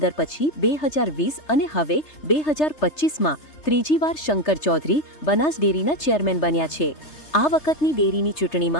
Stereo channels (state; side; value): late; right; 3.3 ms